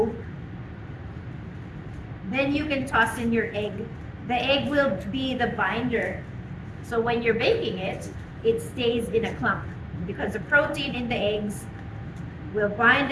then you can toss in your egg. The egg will be the binder. So when you're baking it, it stays in a clump because the protein in the eggs will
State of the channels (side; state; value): both; identical; correlation 1.00